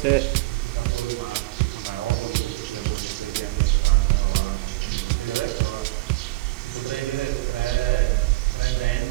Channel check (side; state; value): left; quieter; 20.3 dB